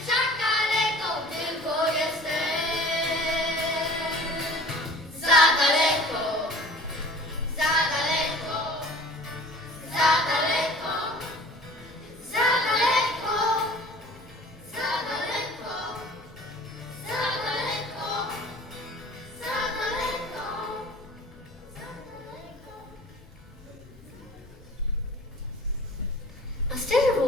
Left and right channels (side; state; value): both; normal; correlation 0.45